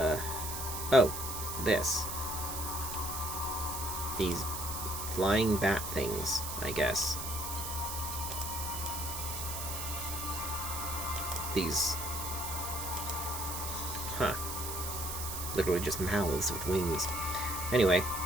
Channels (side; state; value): right; noise; hiss, 5 dB below the sound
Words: Oh, this. These flying bat things, I guess. These... huh. Literally just mouths with wings. Anyway.